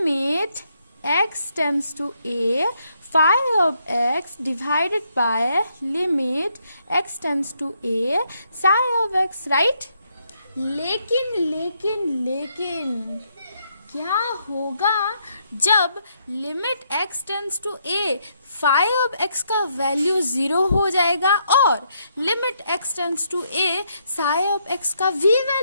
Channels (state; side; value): inverted; both; correlation -0.75